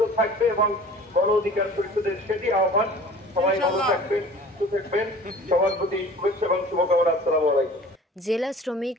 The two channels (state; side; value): normal; both; correlation 0.45